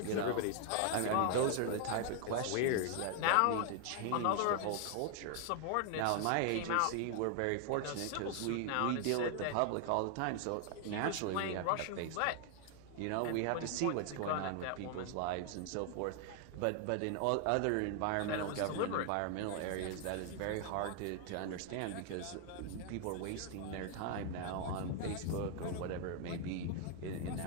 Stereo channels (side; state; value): both; different; correlation 0.00